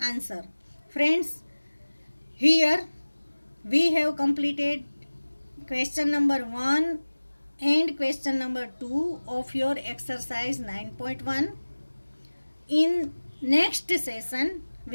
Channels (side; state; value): both; inverted; correlation -1.00